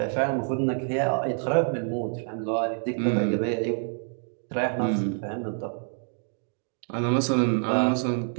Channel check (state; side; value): silent; left; 57 dB below the other